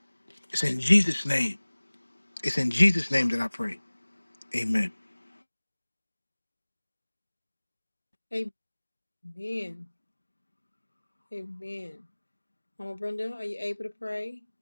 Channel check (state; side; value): inverted; both; correlation -1.00